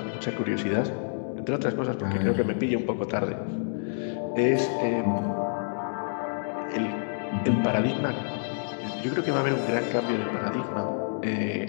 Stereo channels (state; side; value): silent; right; digital silence